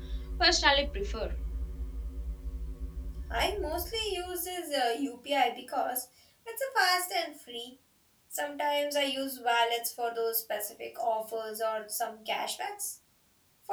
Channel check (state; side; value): identical; both; correlation 1.00